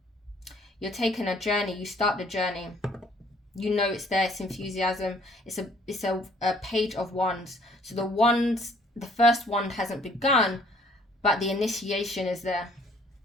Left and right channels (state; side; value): normal; both; correlation 0.60